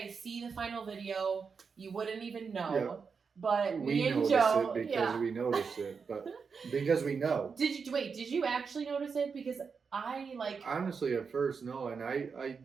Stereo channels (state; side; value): quieter; left; 5.6 dB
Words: see the final video, you wouldn't even know. Yeah. But me and Joe, we noticed it, but because we know. Did you actually notice it? Because I like honestly at first no, and I